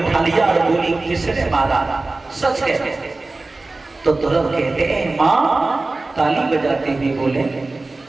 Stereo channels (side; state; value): left; quieter; 3.3 dB